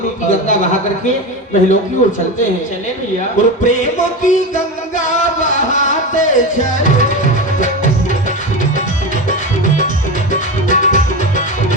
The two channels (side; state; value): both; normal; correlation 0.21